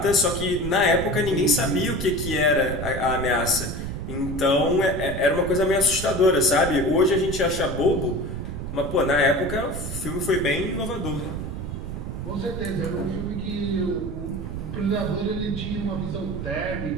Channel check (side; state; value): right; noise; rumble, 6 dB below the sound